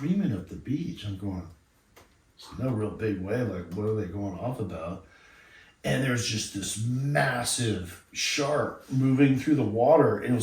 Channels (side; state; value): both; identical; correlation 1.00